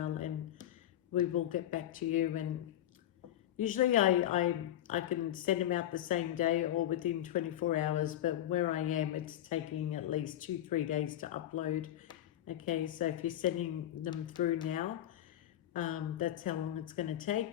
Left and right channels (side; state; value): right; quieter; 12.4 dB